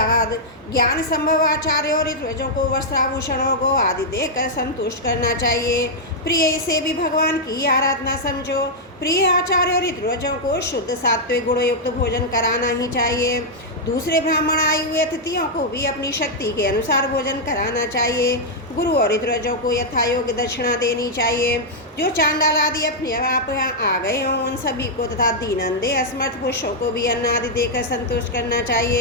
ज्ञान संभव आचार्यों और ऋत्विजों को वस्त्राभूषणों को आदि देकर संतुष्ट करना चाहिए। प्रिय इसे भी भगवान की आराधना समझो। प्रिय आचार्य और ऋत्विजों को शुद्ध सात्विक गुणयुक्त भोजन कराना ही चाहिए। दूसरे ब्राह्मण आए हुए अतिथियों को भी अपनी शक्ति के अनुसार भोजन कराना चाहिए। गुरु और ऋत्विजों को यथायोग्य दक्षिणा देनी चाहिए। जो चांडाल आदि अपने आप यहाँ आ गए हों उन सभी को तथा दीनंदे असमर्थ पुरुषों को भी अन्न आदि देकर संतुष्ट करना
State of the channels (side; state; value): both; normal; correlation -0.05